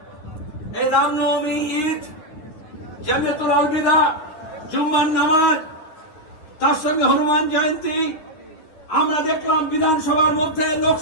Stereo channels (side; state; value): right; late; 9.6 ms